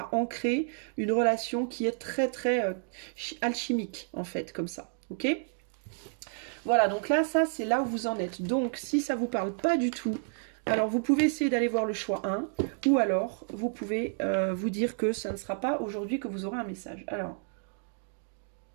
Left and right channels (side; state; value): left; silent; 57 dB below the other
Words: ancrer une relation qui est très très alchimique, en fait, comme ça. Ok ? Voilà, donc là, ça, c'est là où vous en êtes. Donc, si ça vous parle pas du tout, alors vous pouvez essayer d'aller voir le choix 1, ou alors vous pouvez vous dire que ça ne sera pas aujourd'hui que vous aurez un message. Alors,